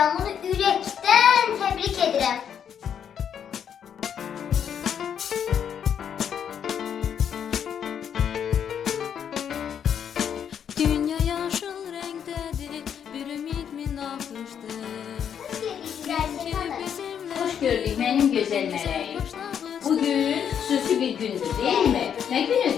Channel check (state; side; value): quieter; right; 8.4 dB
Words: ürəkdən təbrik edirəm. Dünya yaşıl renktedir, bir ümit mi nakıştır? Hoş gördük benim güzel meleğim. Bugün xüsusi bir gündür değil mi? Ne